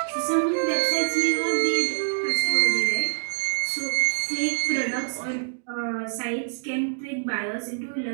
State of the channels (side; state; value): left; silent; digital silence